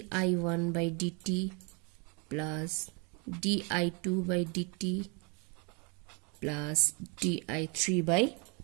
by dt plus di2 by dt plus di3 by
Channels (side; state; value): left; quieter; 33.2 dB